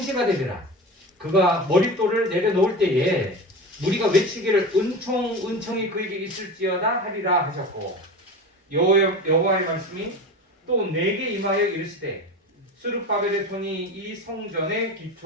되리라. 그가 머릿돌을 내려놓을 때에 우리가 외치기를 은총이 그에게 있을지어다 하리라 하셨고, 여호와의 말씀이 또 내게 임하여 이르시되 스룹바벨의 손이 이 성전의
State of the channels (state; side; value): normal; both; correlation 0.29